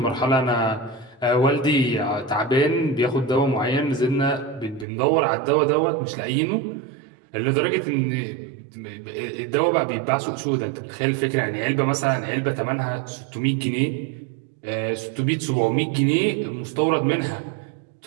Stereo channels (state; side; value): drops out; left; at 4.9 s